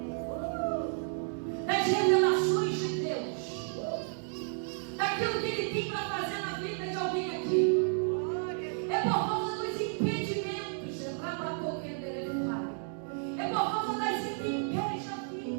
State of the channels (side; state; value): left; silent; 56 dB below the other